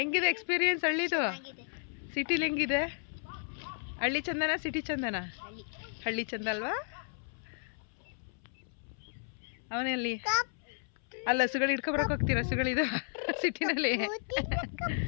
ಎಕ್ಸ್ಪೀರಿಯನ್ಸ್ ಹಳ್ಳಿದು? ಸಿಟಿಲಿ ಹೆಂಗಿದೆ? ಹಳ್ಳಿ ಚಂದನ ಸಿಟಿ ಚಂದನ? ಹಳ್ಳಿ ಚಂದ ಅಲ್ವಾ? ಅವನಲ್ಲಿ ಅಲ್ಲ ಹಸುಗಳು ಹಿಡ್ಕೊಬರಕ್ಕೆ ಹೋಗ್ತೀರಾ? ಹಸುಗಳಿದು ಸಿಟಿನಲ್ಲಿ.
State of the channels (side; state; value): right; silent; 55 dB below the other